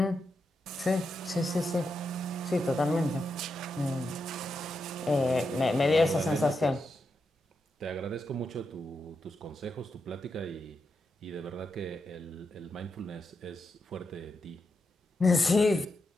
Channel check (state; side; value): normal; both; correlation 0.85